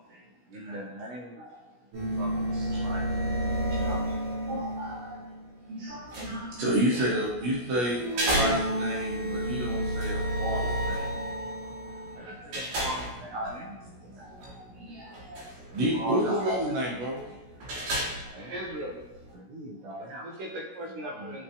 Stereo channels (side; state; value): left; late; 16 ms